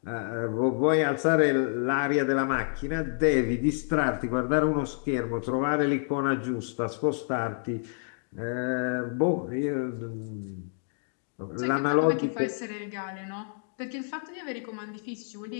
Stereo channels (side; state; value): right; silent; 59 dB below the other